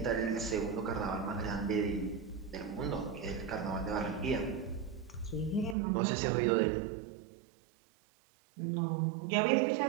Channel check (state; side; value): drops out; left; at 5.8 s